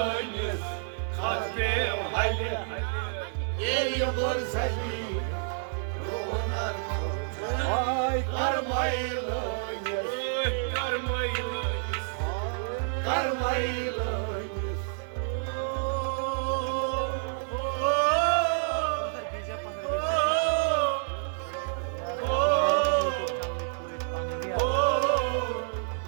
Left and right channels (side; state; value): left; silent; digital silence